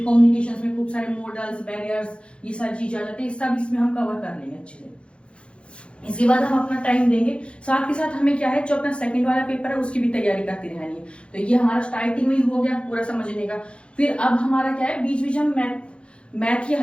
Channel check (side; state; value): right; late; 0.058 ms